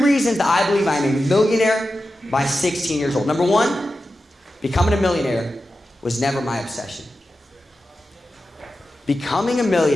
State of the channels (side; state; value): both; normal; correlation 0.92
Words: that I believe I'm a millionaire by 16 years old. Number 1, becoming a millionaire was never my obsession. Becoming a